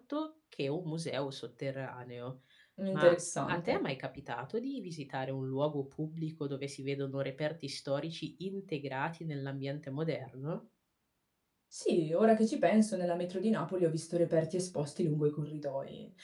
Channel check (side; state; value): both; identical; correlation 1.00